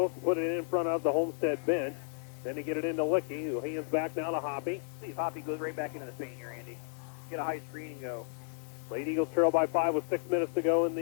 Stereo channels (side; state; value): right; silent; 56 dB below the other